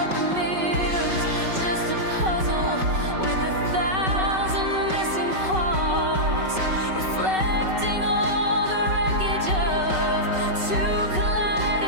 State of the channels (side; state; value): left; late; 5.3 ms